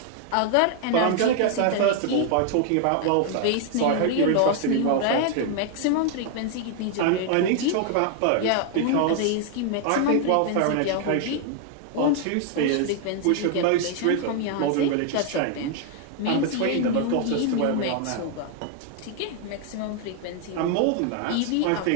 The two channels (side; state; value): both; different; correlation 0.00